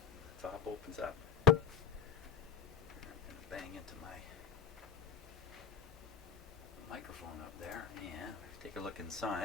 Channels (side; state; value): right; quieter; 6.1 dB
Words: The top opens up. I'm going to bang into my microphone up there and take a look